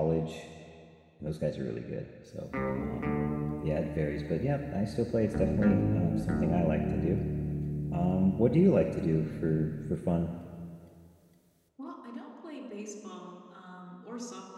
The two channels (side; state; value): both; identical; correlation 1.00